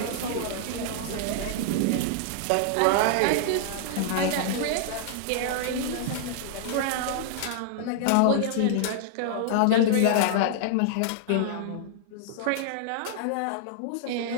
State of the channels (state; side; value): different; both; correlation -0.01